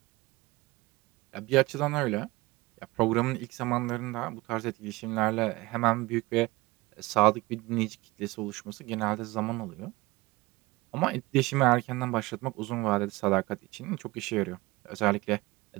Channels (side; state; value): left; quieter; 21.4 dB